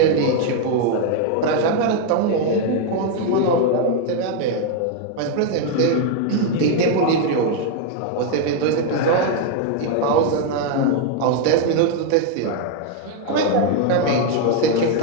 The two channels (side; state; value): both; different; correlation 0.01